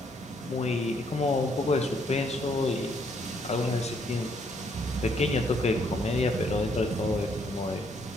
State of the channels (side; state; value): both; normal; correlation 0.70